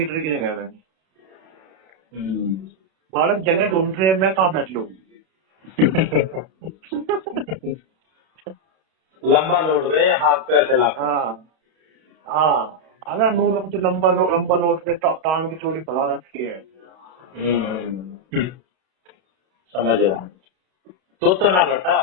की जगह में हम्म। बालक जगह ढूंढ रहे हैं, मैं कहाँ बैठ लूँ। लंबा लोड गए हाथ पैर चला कर। हाँ हाँ, अगर नूर तो लंबा नोट पे टांग की चोरी फैला रखी है। हम्म। समझ रहा हूँ। तो ना लौटा।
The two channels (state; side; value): late; left; 32 ms